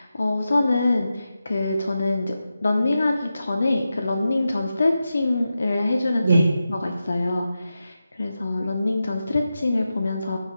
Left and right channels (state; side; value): inverted; both; correlation -0.91